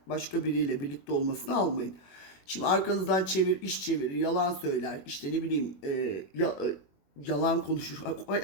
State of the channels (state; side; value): late; right; 21 ms